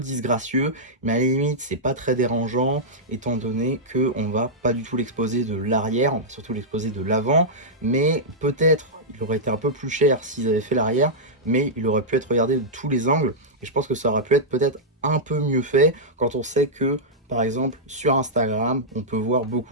mais à la limite c'est pas très dérangeant étant donné qu'on va pas du tout l'exposer de l'arrière, on va surtout l'exposer de l'avant. Mais peut-être il aurait été un peu plus cher s'ils avaient fait l'arrière, mais il aurait pu être regardé de tous les angles et je pense que ça aurait pu être peut-être un peu mieux fait quand on sait que par exemple sur Instagram on peut voir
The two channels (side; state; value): both; normal; correlation -0.09